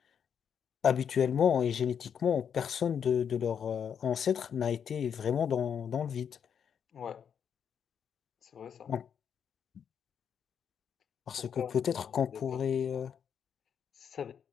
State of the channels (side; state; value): right; quieter; 7.8 dB